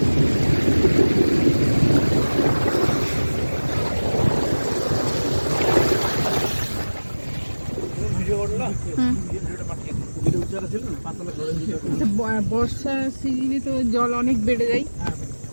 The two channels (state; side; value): inverted; both; correlation -1.00